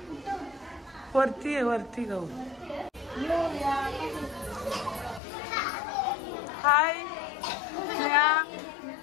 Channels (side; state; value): right; drops out; at 5.2 s